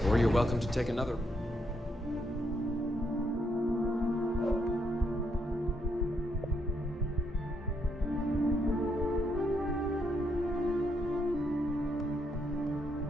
Or you're welcome to take another.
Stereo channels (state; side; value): normal; both; correlation 0.76